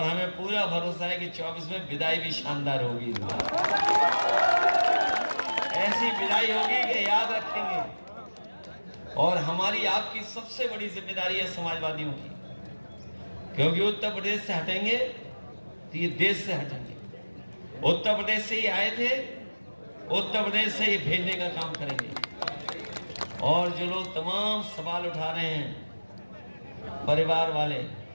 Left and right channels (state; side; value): inverted; both; correlation -1.00